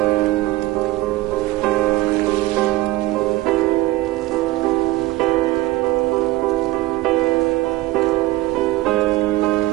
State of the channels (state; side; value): quieter; left; 17.8 dB